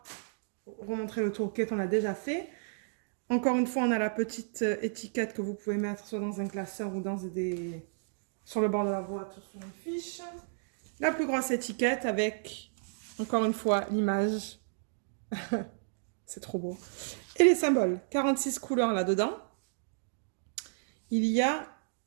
remontrer le tourquet, on l'a déjà fait. Encore une fois, on a la petite étiquette que vous pouvez mettre soit dans un classeur ou sur le bord de la boîte ou sur une fiche. La plus grosse étiquette avec, encore une fois, l'image. C'est trop beau. Et les symboles. 46 couleurs là-dedans. Il y a...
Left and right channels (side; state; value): left; silent; digital silence